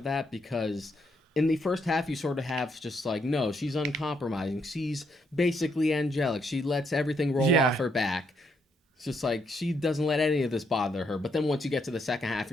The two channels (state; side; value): normal; both; correlation 0.75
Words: that, because in the first half you sort of have just like, no, she's uncompromising. She's basically angelic. She lets everything roll off her back. It's just like, she doesn't let any of this bother her. But then once you get to the second half,